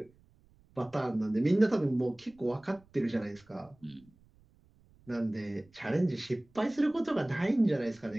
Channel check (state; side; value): noise; right; rumble, 30 dB below the sound